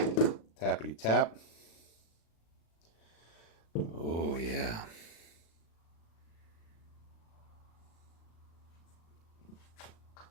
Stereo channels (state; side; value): late; right; 36 ms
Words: Tappity tap. Oh yeah.